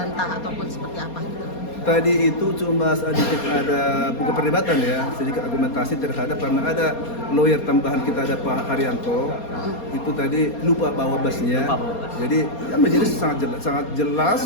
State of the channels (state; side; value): late; right; 4.3 ms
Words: ataupun seperti apa gitu? Tadi itu cuma sedikit ada bukan perdebatan ya, sedikit argumentasi terhadap karena ada lawyer tambahan kita, ada Pak Haryanto. Itu tadi lupa bawa basnya. Jadi ya menjadi sangat jelas